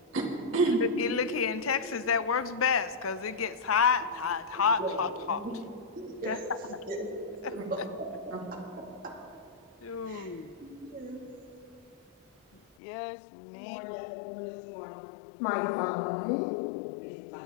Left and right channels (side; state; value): right; drops out; at 12.6 s